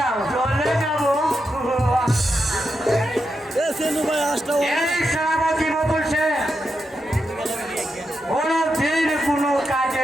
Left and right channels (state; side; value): normal; both; correlation 0.86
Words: চলে যাবো। ভাই আসটা এই সেনাপতি বলছে কোনো দিন কোনো কাজে